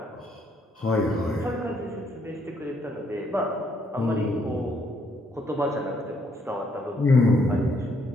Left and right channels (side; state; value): both; normal; correlation 0.71